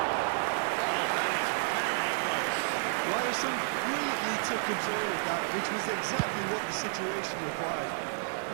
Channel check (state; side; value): silent; left; digital silence